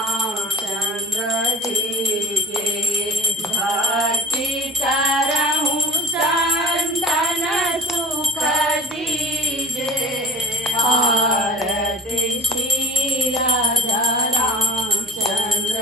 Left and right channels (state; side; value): normal; both; correlation 0.39